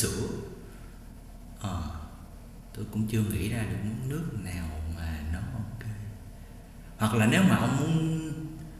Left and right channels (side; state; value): both; identical; correlation 1.00